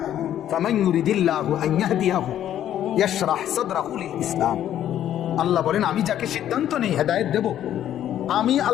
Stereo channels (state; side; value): quieter; right; 11.2 dB